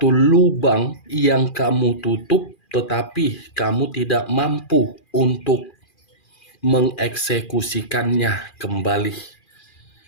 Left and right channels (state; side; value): late; right; 2.4 ms